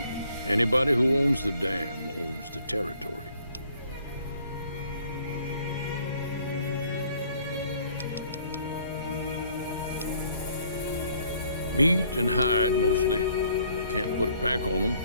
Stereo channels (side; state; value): both; inverted; correlation -0.62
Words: Anybody who owns the dam owns the territory. Meat and hide, mostly. Can't put a pack on them.